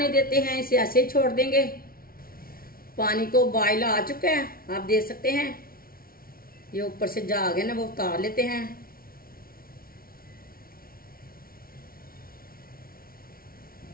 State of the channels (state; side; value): late; right; 0.43 ms